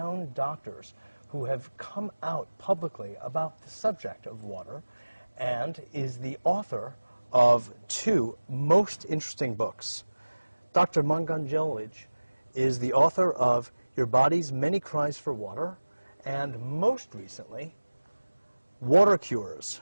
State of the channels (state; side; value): inverted; both; correlation -1.00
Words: doctors who have come out publicly about the subject of water and is the author of two most interesting books. Dr. Batmanghelidj is the author of Your Body's Many Cries for Water, and most recently, Water Cures,